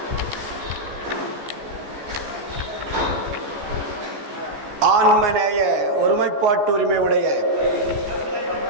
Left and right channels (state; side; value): late; left; 14 ms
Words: ஆன்மநேய ஒருமைப்பாட்டு உரிமை உடைய